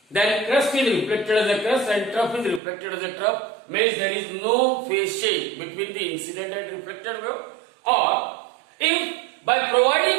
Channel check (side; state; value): left; drops out; at 2.6 s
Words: then crust is reflected as a crust and trough is reflected as a trough, means there is no phase change between the incident and reflected wave. Or if by